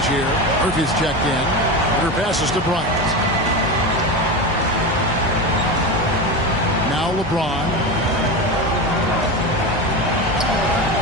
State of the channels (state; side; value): normal; both; correlation 0.21